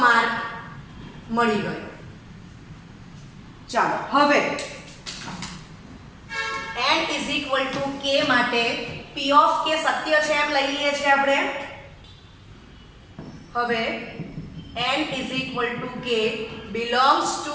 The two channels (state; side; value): identical; both; correlation 1.00